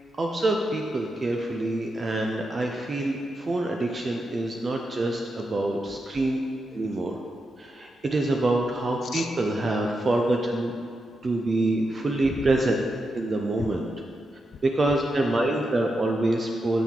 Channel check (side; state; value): both; normal; correlation 0.86